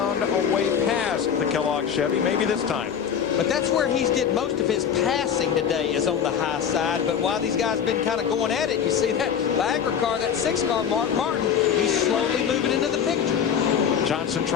a way past the Kellogg Chevy. Maybe this time. But that's where he's did most of his passing today, is on the high side. But while these guys have been kind of going at it, you see that Bagger car, that 6-car, Mark Martin, he's slowly moving into the picture. Johnson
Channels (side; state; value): right; quieter; 8.0 dB